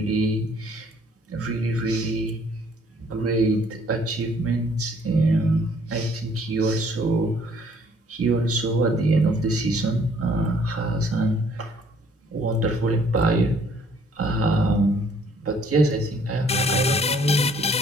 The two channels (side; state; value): both; normal; correlation 0.61